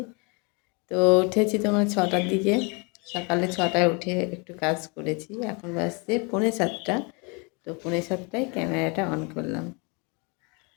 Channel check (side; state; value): right; quieter; 31.5 dB